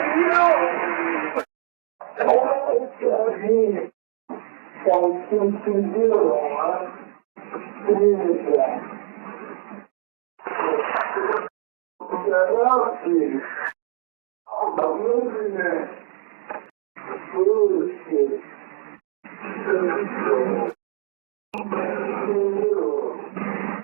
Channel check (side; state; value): left; silent; 59 dB below the other